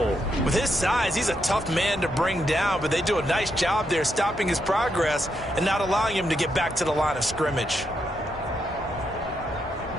With his size, he's a tough man to bring down, but they do a nice job there stopping his progress and not allowing him to get back to the line of scrimmage.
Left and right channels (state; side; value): normal; both; correlation 0.81